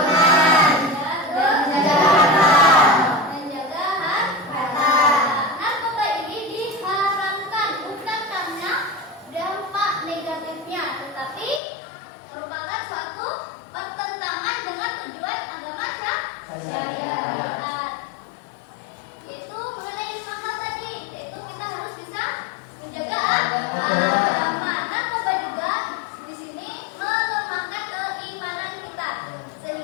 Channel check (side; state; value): right; drops out; at 11.6 s